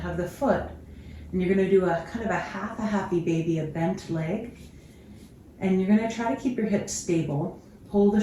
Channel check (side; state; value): both; identical; correlation 1.00